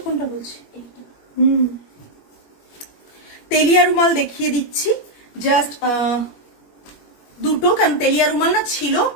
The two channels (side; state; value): right; late; 21 ms